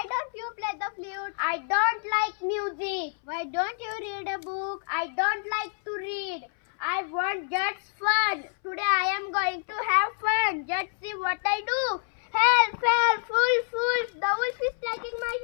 you play the flute? I don't like music. Why don't you read a book? I don't like to read. I want just fun. Today I am going to have fun. Just see what I do. Help, help, wolf. The wolf is taking my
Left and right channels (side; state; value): right; silent; 60 dB below the other